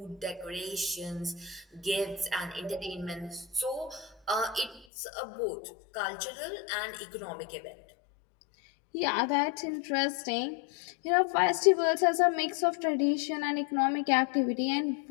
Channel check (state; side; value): drops out; right; at 4.9 s